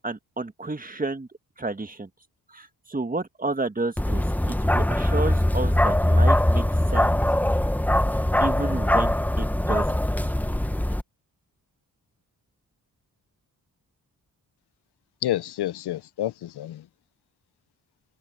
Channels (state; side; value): normal; both; correlation 0.85